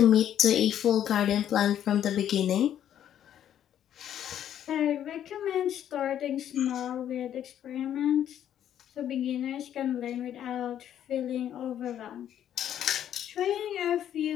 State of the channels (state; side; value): quieter; right; 10.4 dB